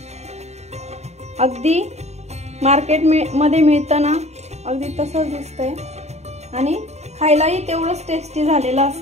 अगदी मार्केट मध्ये मिळतं ना अगदी तसंच दिसतंय आणि खायलाही तेवढंच टेस्टी झालेलं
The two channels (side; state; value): left; late; 0.32 ms